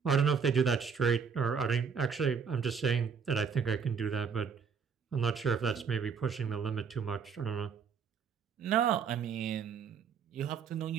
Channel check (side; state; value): left; quieter; 6.3 dB